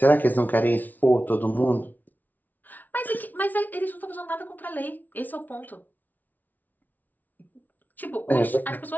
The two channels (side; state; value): right; late; 0.081 ms